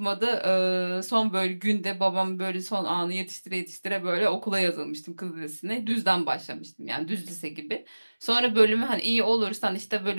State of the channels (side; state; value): both; inverted; correlation -1.00